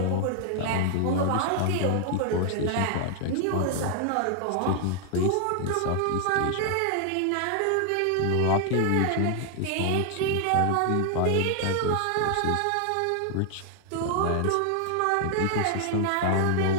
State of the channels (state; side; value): different; both; correlation 0.00